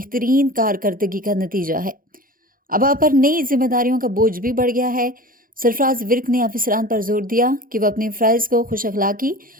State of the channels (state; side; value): late; left; 0.41 ms